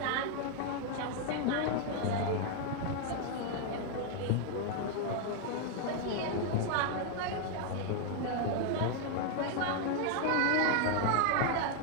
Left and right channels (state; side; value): different; both; correlation 0.00